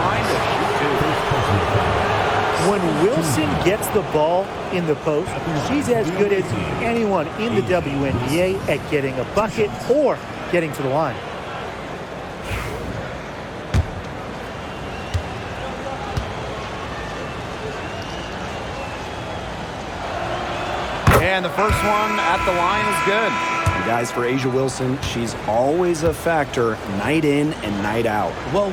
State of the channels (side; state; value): both; identical; correlation 1.00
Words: line to shoot two. When Wilson gets the ball in the post, she's as good as anyone in the WNBA at getting a bucket or getting to the line. And the first one at the line is good. And guys, for A'ja Wilson, she's always a factor night in and night out. Well,